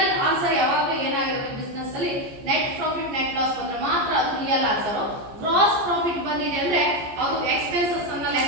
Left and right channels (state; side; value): late; left; 14 ms